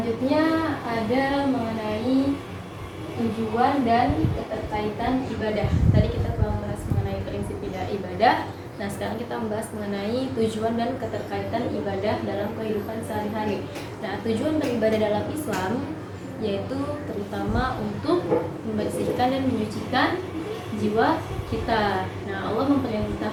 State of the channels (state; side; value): identical; both; correlation 1.00